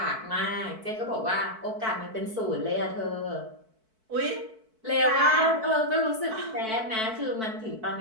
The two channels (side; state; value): left; late; 4.5 ms